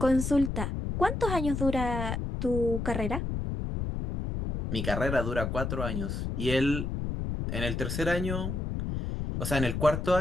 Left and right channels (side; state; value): left; noise; rumble, 3 dB below the sound